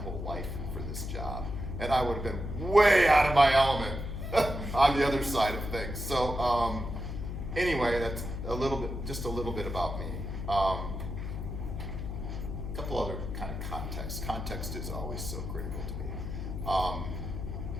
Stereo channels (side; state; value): left; noise; hum, 5 dB below the sound